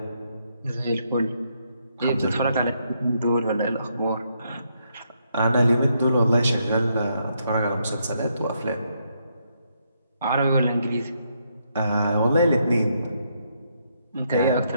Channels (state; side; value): inverted; both; correlation -0.77